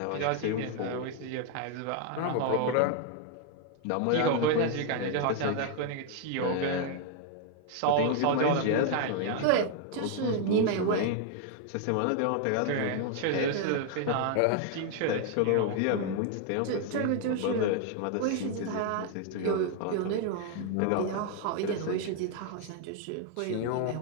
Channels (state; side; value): different; both; correlation 0.00